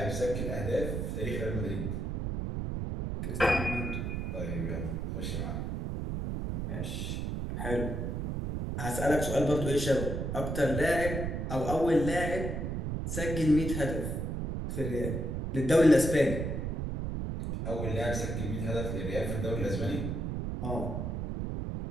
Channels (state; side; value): noise; right; rumble, 2 dB below the sound